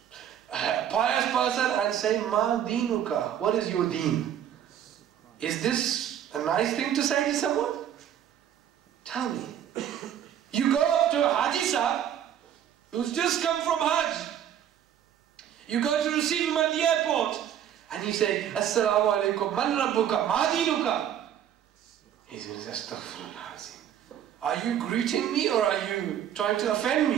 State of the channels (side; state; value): left; quieter; 10.0 dB